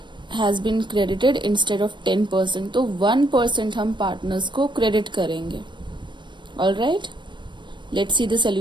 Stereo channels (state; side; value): late; left; 0.22 ms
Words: has been credited instead of 10%, तो 1% हम पार्टनर्स को क्रेडिट करेंगे. All right, let's see the